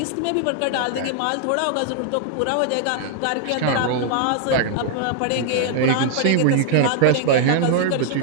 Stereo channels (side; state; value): both; different; correlation 0.00